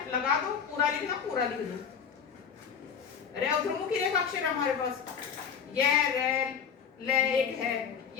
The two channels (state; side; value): quieter; right; 7.0 dB